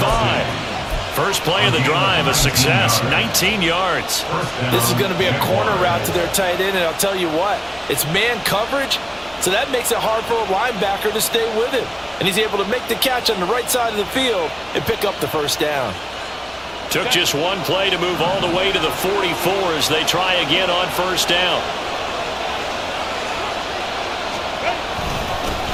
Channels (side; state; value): both; identical; correlation 1.00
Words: First play of the drive, a success, 19 yards. This is going to be a corner route to their tight end, and I'll tell you what, it's man coverage, so that makes it hard for a linebacker to stay with him. And he's able to make the catch on the right side of the field and pick up the first down. Took just one play to move all the way to the 44 as they try again on first down.